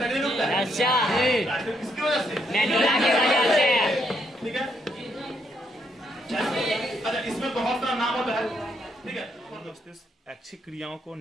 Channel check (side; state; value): both; normal; correlation 0.76